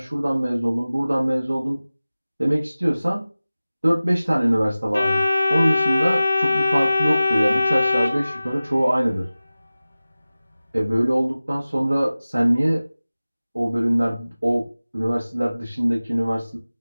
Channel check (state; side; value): inverted; both; correlation -0.97